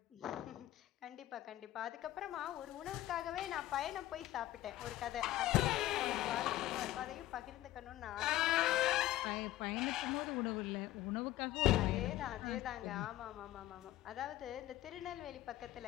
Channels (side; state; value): right; quieter; 15.2 dB